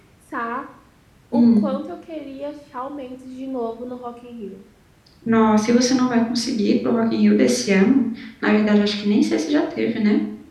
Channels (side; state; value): both; identical; correlation 1.00